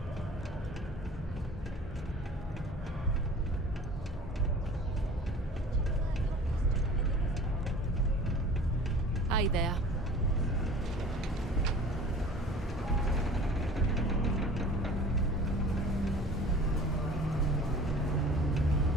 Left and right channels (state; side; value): normal; both; correlation 0.44